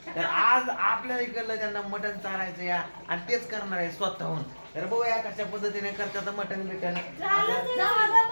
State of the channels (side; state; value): both; inverted; correlation -1.00